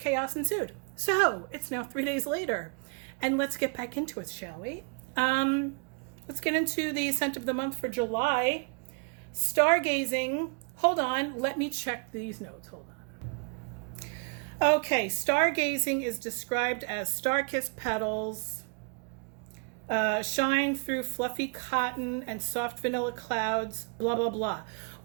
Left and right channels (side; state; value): left; quieter; 38.8 dB